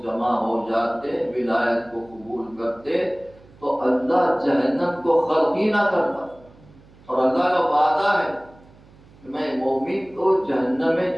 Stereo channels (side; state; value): right; noise; hum, 25 dB below the sound